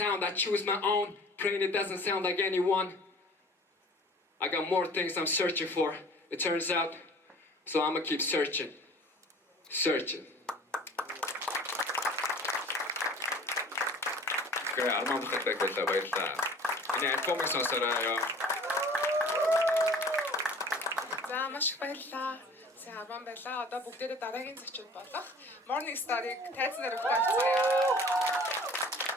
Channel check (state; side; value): normal; both; correlation 0.47